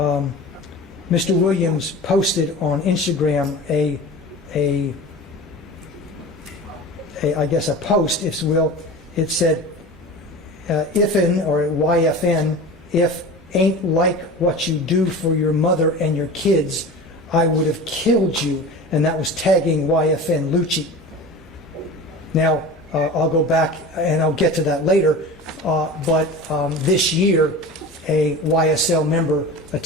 Mr. Williams posted on Instagram I guess a post, if you will. It said, "If'n or YFN, if ain't like what you do for your mother and your kids, I would have killed you," and that was tagging YFN Lucci. Now, I'll go back and I'll get to that later, but this year, a YSL member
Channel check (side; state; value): both; normal; correlation 0.34